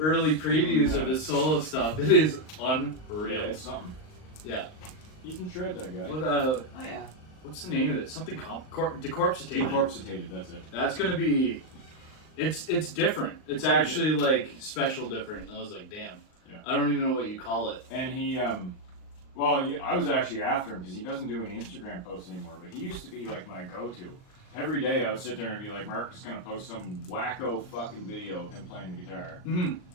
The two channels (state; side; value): late; right; 38 ms